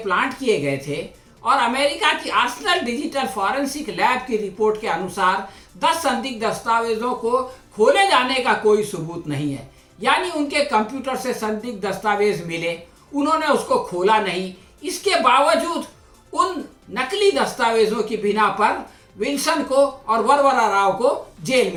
किए गए थे और अमेरिका की आर्सेनल डिजिटल फॉरेंसिक लैब की रिपोर्ट के अनुसार 10 संदिग्ध दस्तावेजों को खोले जाने का कोई सबूत नहीं है। यानी उनके कंप्यूटर से संदिग्ध दस्तावेज मिले, उन्होंने उसको खोला नहीं। इसके बावजूद उन नकली दस्तावेजों की बिना पर विल्सन को और वरवरा राव को जेल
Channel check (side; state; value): both; identical; correlation 1.00